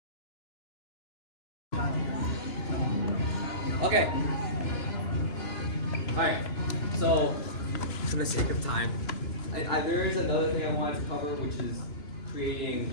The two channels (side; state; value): right; late; 2.9 ms